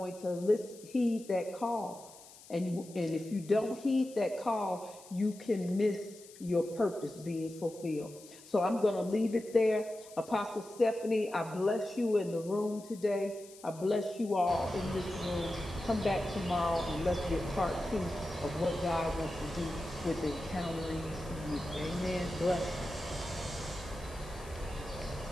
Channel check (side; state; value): left; noise; hiss, 20 dB below the sound